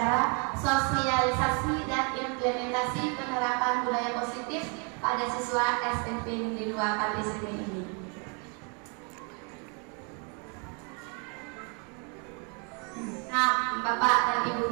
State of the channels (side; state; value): left; quieter; 35.8 dB